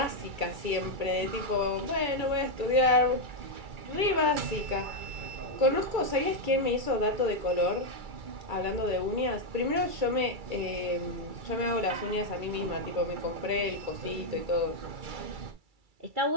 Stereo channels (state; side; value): late; left; 2.3 ms